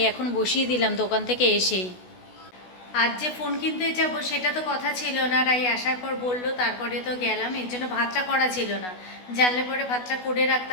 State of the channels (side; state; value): right; late; 16 ms